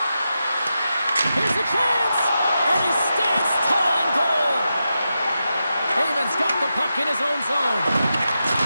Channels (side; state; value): both; inverted; correlation -0.89